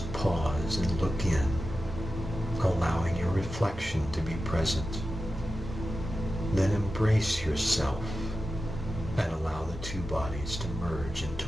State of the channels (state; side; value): normal; both; correlation 0.92